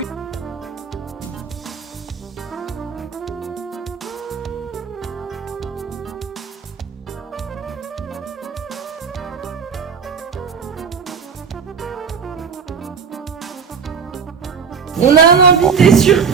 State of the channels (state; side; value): quieter; left; 6.3 dB